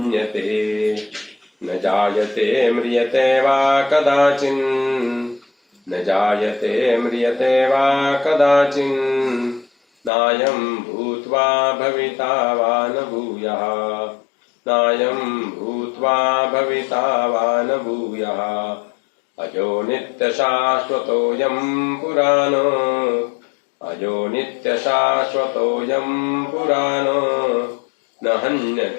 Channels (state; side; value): drops out; right; at 10.1 s